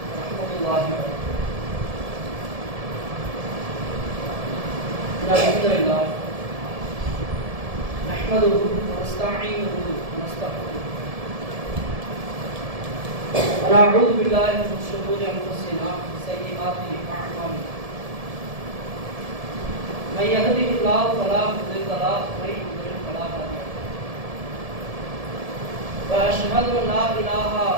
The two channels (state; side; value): late; left; 1.7 ms